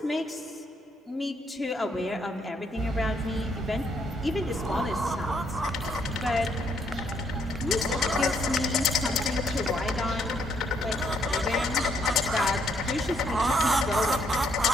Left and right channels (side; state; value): both; normal; correlation 0.71